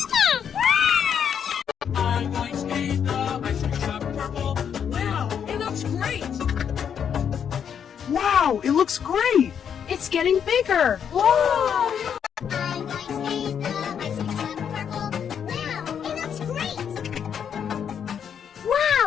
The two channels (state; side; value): quieter; right; 8.0 dB